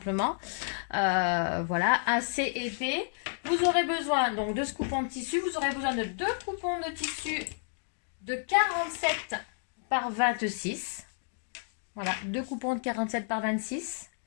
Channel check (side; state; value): right; silent; digital silence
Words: Voilà, assez épais. Vous aurez besoin donc de ce coupon de tissu. Vous aurez besoin de deux coupons de tissu de 47 par 26. Voilà, deux coupons de 47 par 26.